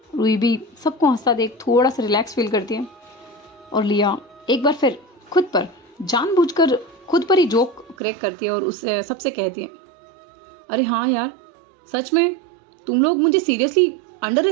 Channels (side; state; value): left; drops out; at 8.0 s